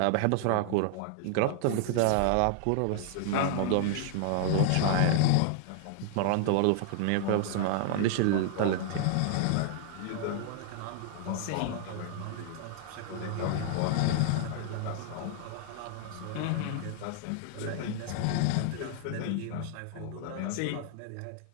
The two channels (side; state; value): both; different; correlation 0.00